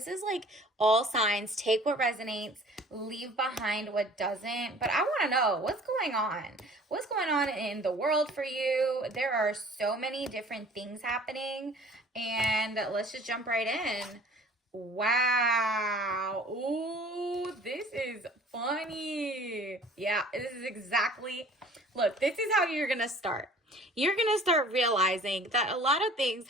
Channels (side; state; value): both; normal; correlation 0.49